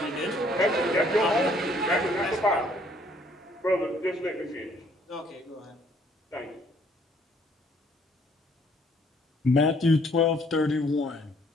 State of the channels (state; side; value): normal; both; correlation 0.63